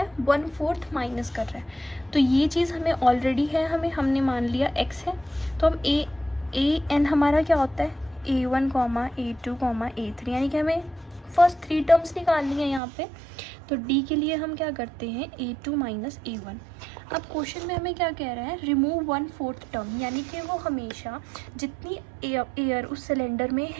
है, 1/4 माइनस कर रहा है। तो ये चीज़ हमें ऑलरेडी है, हमने मान लिया x है। तो हम ए एन हमारा क्या होता है, a1, a2, a3, यानी कि हमें फर्स्ट 3 टर्म्स निकालनी है यहाँ पे। तो d के लिए हम क्या करते हैं, a2 माइनस a1। अब क्वेश्चन में हमें क्या कह रहा है, रिमूव 1/4 टर्म, यानी कि वो हमेशा जितनी एयर उस सिलेंडर में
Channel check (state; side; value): drops out; left; at 12.8 s